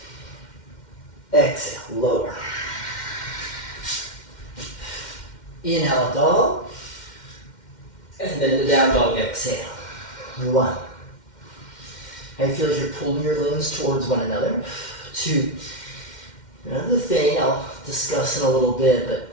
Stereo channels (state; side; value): late; right; 2.1 ms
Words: Exhale, lower. Inhale, up dog. And then the down dog, exhale. One. How you feel as you're pulling your limbs towards one another. Two. Another thing I'll discuss in a little bit,